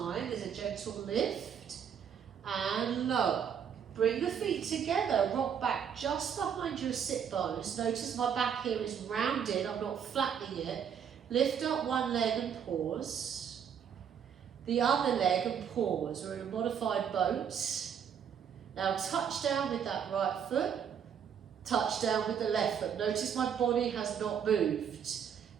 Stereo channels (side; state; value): left; quieter; 7.9 dB